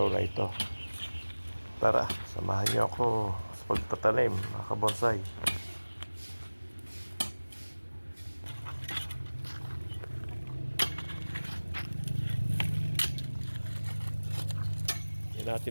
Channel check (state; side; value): inverted; both; correlation -1.00